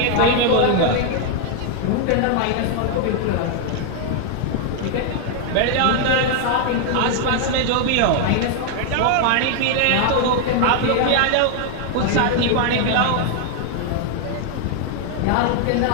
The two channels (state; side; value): different; both; correlation 0.00